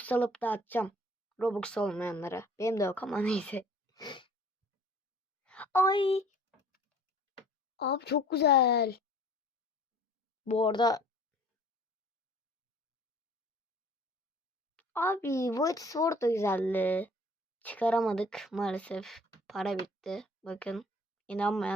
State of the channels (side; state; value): both; normal; correlation 0.51